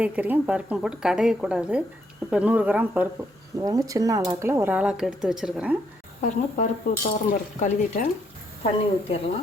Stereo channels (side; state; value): both; normal; correlation 0.73